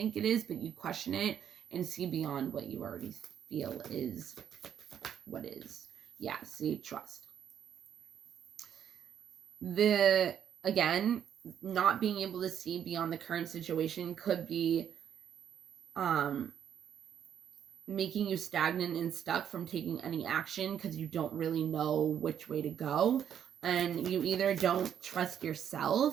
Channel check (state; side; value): quieter; left; 9.1 dB